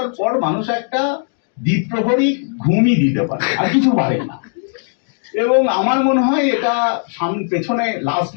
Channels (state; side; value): silent; right; 58 dB below the other